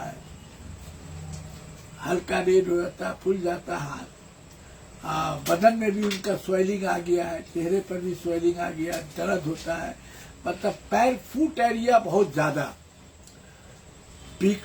हल्का रेड हो जाता है, फूल जाता है हाथ। बदन में भी उनका स्वेलिंग आ गया है, चेहरे पर भी स्वेलिंग आ गया, दर्द होता है। मतलब पैर, फुट एरिया बहुत ज्यादा, पिक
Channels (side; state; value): both; identical; correlation 1.00